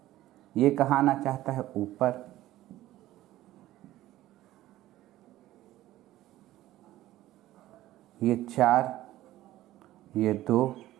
ये कहाँ आना चाहता है? ऊपर। ये 4, ये 2,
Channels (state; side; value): quieter; left; 15.2 dB